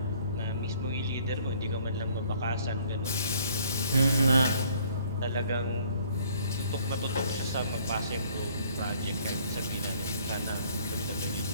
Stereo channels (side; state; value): both; inverted; correlation -0.59